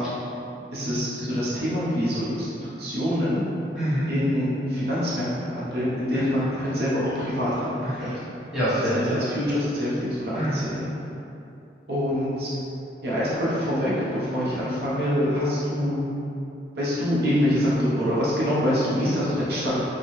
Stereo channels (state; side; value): normal; both; correlation 0.67